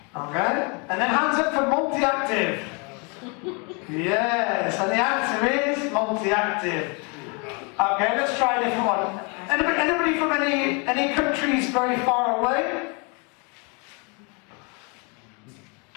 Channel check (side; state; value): right; quieter; 32.8 dB